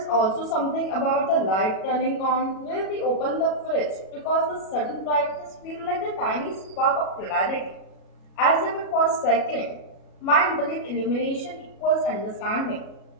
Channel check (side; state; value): right; late; 37 ms